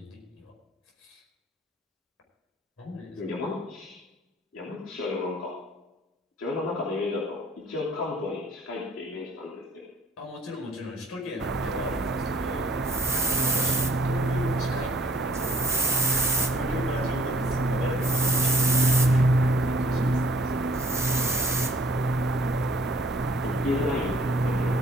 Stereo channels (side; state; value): both; normal; correlation 0.60